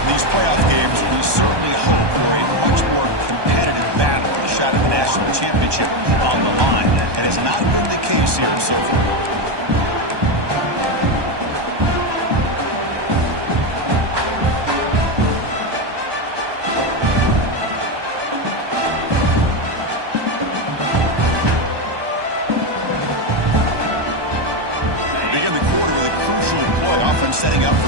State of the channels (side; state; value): left; late; 1.2 ms